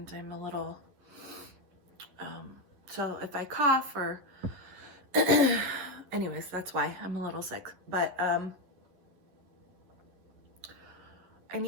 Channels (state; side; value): late; left; 11 ms